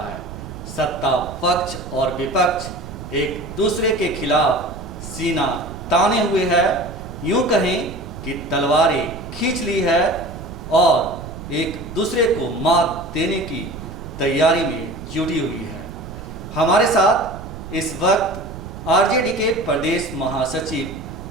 सत्ता पक्ष और विपक्ष एक दूसरे के खिलाफ सीना ताने हुए है, यूं कहें कि तलवारें खींच ली है और एक दूसरे को मात देने की तैयारी में जुटी हुई है। हमारे साथ इस वक्त आरजेडी के प्रदेश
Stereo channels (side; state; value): right; noise; rumble, 11 dB below the sound